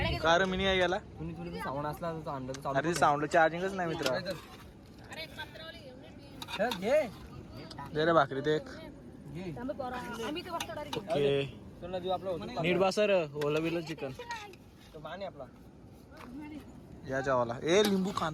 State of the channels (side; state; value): both; identical; correlation 1.00